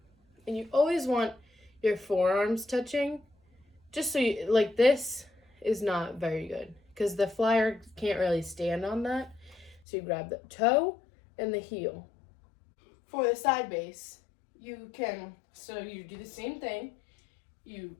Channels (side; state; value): right; drops out; at 9.8 s